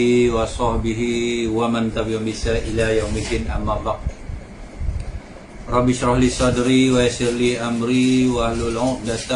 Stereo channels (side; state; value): both; identical; correlation 1.00